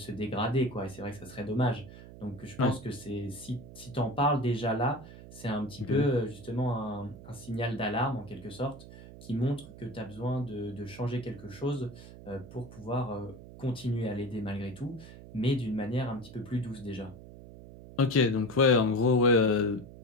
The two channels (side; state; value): right; noise; hum, 16 dB below the sound